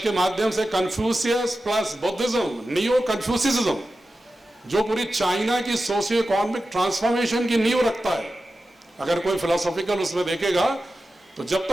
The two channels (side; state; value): both; normal; correlation 0.93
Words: माध्यम से कन्फ्यूशियस प्लस बुद्धिज्म, नियो कन्फ्यूसिज्म, जो पूरी चाइना की सोशियो इकोनॉमिक ट्रांसफॉर्मेशन की नींव रखता है, अगर कोई फिलोसॉफिकल उसमें देखेगा तो जब